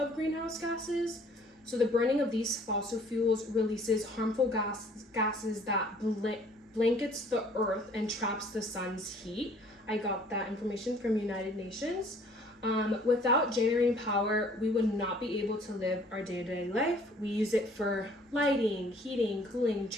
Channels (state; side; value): normal; both; correlation 0.56